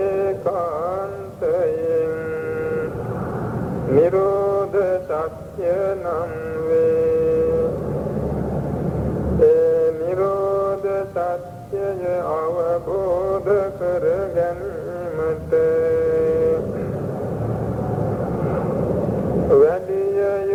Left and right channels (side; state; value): both; identical; correlation 1.00